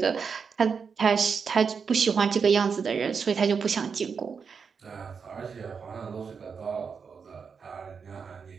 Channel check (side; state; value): left; quieter; 5.9 dB